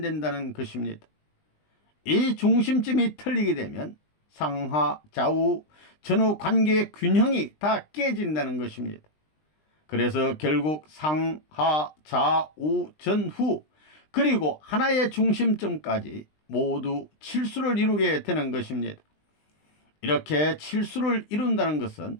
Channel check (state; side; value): late; right; 20 ms